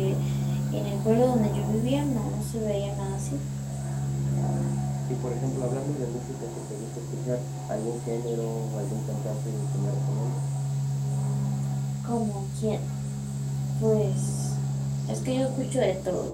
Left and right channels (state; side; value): identical; both; correlation 1.00